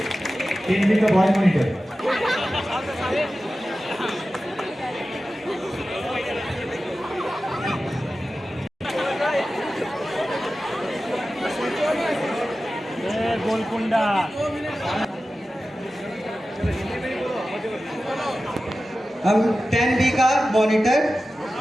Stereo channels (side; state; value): both; normal; correlation 0.94